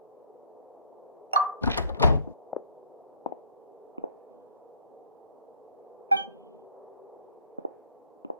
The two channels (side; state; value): both; inverted; correlation -0.60